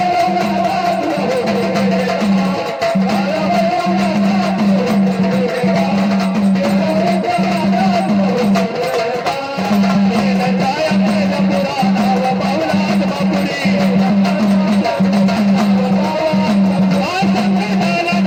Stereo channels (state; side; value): identical; both; correlation 1.00